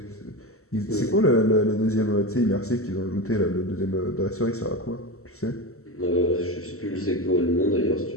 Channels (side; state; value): right; late; 0.63 ms